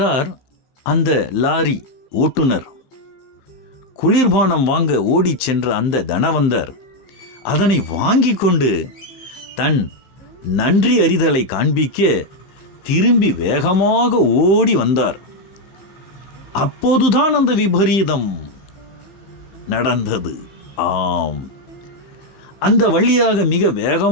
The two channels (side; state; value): right; late; 15 ms